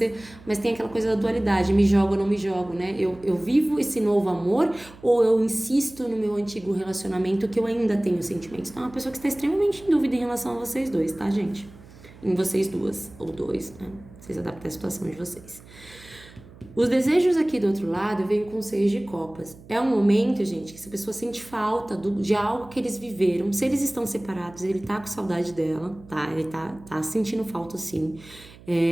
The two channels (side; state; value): right; noise; hum, 21 dB below the sound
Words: mas tem aquela coisa da dualidade, me jogo ou não me jogo, né? Eu vivo esse novo amor ou eu insisto no meu antigo relacionamento que eu ainda tenho sentimentos? Então é uma pessoa que está extremamente em dúvida em relação a vocês dois, tá, gente? Em vocês duas, ou dois, né? Vocês adaptam a situação de vocês. Os desejos aqui do outro lado vêm com 6 de copas. É um momento, gente, que essa pessoa sente falta de algo que eles viveram. Se eles estão separados, ele tá com saudade dela, tá? Ele tá sentindo falta, sim.